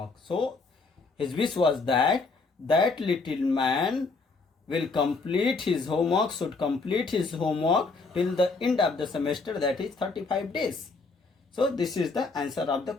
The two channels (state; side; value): quieter; right; 4.0 dB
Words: So his wish was that little man will complete his homework, should complete his homework till the end of the semester, that is 35 days. So this is the answer of the